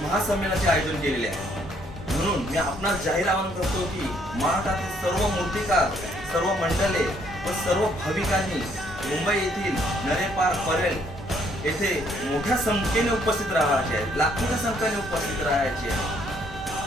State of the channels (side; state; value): both; normal; correlation 0.67